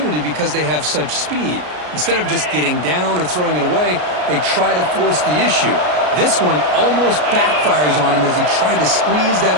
because they have such speed. Instead of just getting down or throwing it away, they try to force the issue. This one almost backfires on him as he tried to squeeze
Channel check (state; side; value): late; left; 33 ms